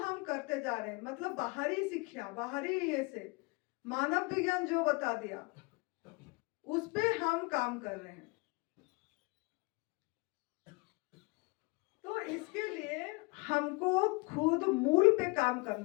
करते जा रहे हैं। मतलब बाहरी शिक्षा, बाहरी ये से मानव विज्ञान जो बता दिया, उस पे हम काम कर रहे हैं। तो इसके लिए हमको खुद मूल पे काम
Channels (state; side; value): quieter; right; 27.5 dB